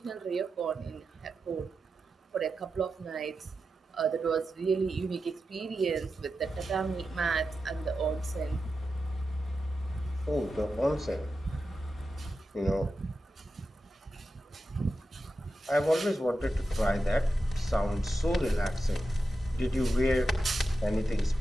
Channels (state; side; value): normal; both; correlation 0.90